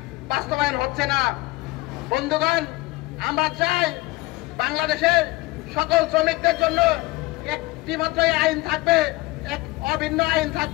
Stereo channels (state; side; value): quieter; right; 21.0 dB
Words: বাস্তবায়ন হচ্ছে না। বন্ধুগণ, আমরা চাই বাংলাদেশের সকল শ্রমিকদের জন্য একটি মাত্র আইন থাকবে, এক অভিন্ন আইন